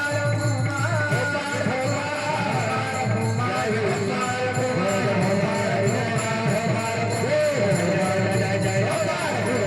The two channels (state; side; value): identical; both; correlation 1.00